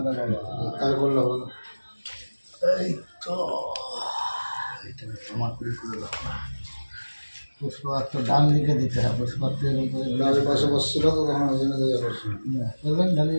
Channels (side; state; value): both; inverted; correlation -1.00